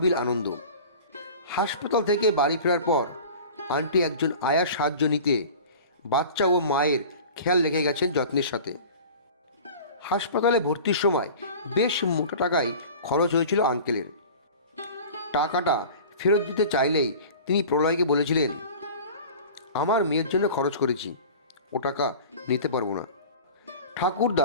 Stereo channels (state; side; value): inverted; both; correlation -0.39